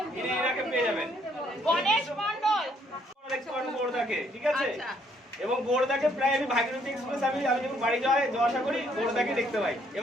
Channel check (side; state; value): both; normal; correlation 0.68